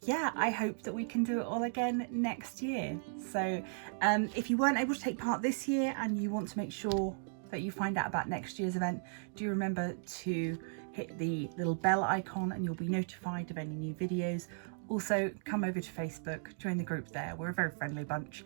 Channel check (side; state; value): left; silent; digital silence